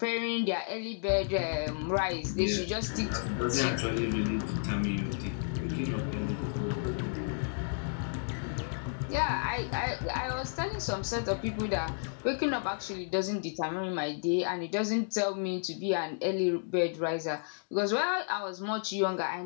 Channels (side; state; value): right; silent; digital silence